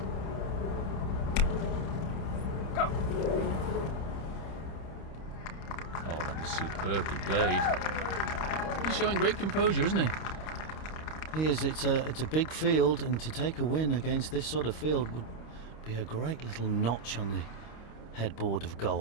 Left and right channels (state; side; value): late; right; 25 ms